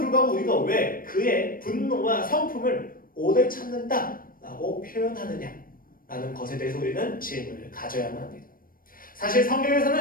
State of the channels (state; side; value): late; right; 0.41 ms